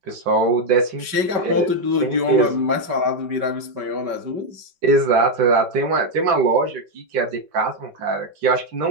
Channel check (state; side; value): late; left; 5.2 ms